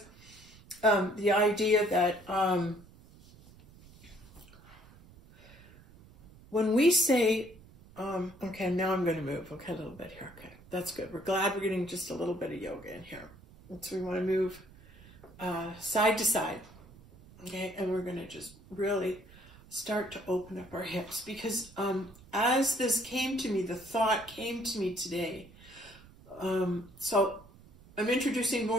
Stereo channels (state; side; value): noise; right; rumble, 23 dB below the sound